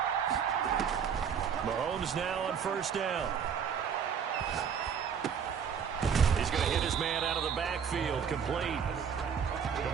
Mahomes now on 1st down. He's going to hit his man out of the backfield. Complete.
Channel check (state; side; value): quieter; left; 7.3 dB